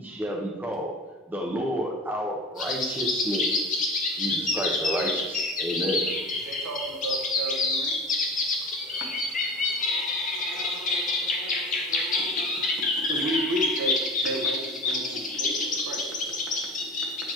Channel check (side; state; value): both; normal; correlation 0.36